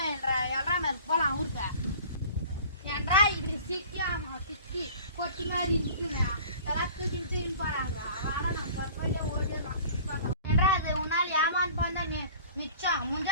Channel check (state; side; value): inverted; both; correlation -0.45